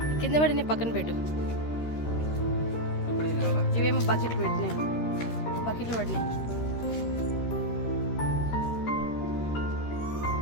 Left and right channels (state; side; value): late; right; 13 ms